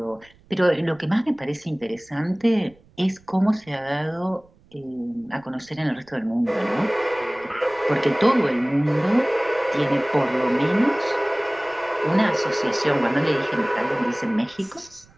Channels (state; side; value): noise; right; rumble, 29 dB below the sound